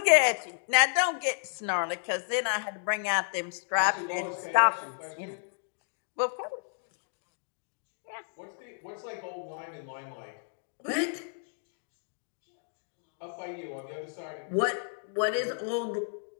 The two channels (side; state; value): right; silent; digital silence